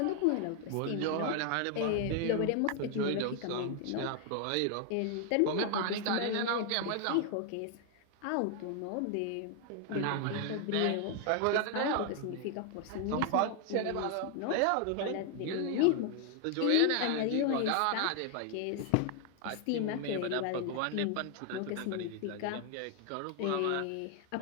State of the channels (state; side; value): different; both; correlation 0.00